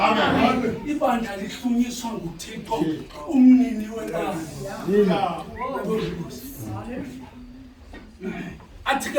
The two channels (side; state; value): both; identical; correlation 1.00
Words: Ibandla lihlunyiswa nguThixo umnini wenkani. Athi